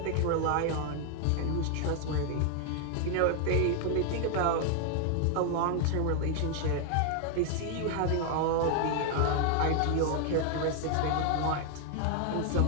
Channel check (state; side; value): different; both; correlation 0.00